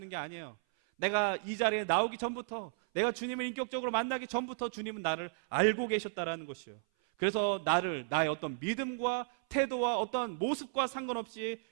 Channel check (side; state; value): left; silent; 55 dB below the other